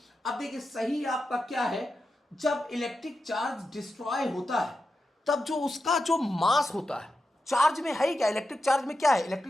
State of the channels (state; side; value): normal; both; correlation 0.90